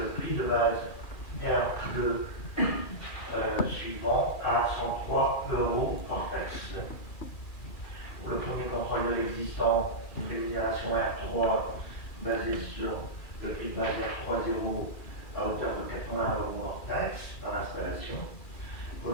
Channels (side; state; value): right; late; 2.4 ms